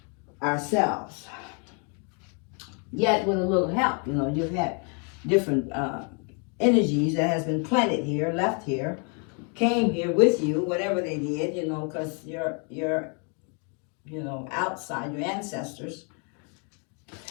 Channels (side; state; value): right; quieter; 37.8 dB